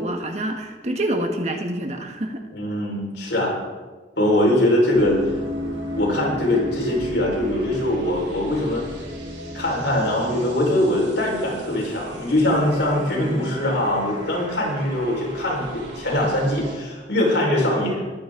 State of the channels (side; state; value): both; normal; correlation 0.43